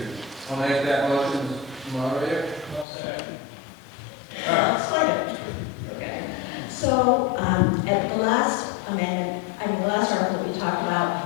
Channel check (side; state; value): right; drops out; at 2.9 s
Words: I'll make that motion, moderator. Second. Okay. So at the last amendment, the last article we talked